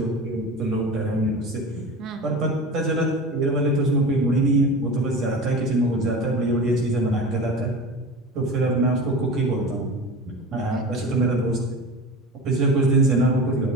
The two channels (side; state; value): both; normal; correlation 0.31